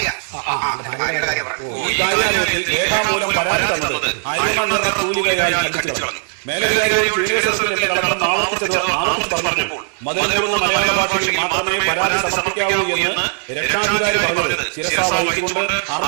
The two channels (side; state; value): left; silent; 67 dB below the other